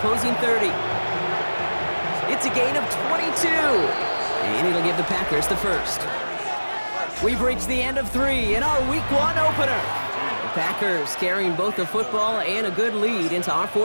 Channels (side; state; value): both; inverted; correlation -1.00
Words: 30. It's a gain of 22. And it'll give the Packers the first. We've reached the end of 3 in our Week 1 opener. The Packers carrying both the football and a good lead into our